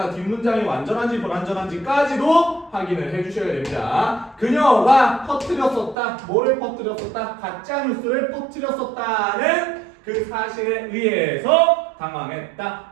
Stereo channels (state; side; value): drops out; left; at 6.0 s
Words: 뒷문장이 완전한지 불완전한지까지도 확인을 해주셔야 됩니다. 그녀가 퍼뜨렸었다. 뭐를 퍼뜨렸었다? 가짜뉴스를 퍼뜨렸었다는 그 사실에 의해서 당황했다.